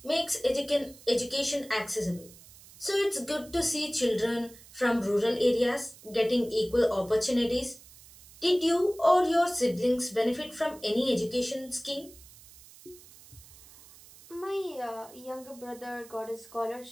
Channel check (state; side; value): noise; right; hiss, 21 dB below the sound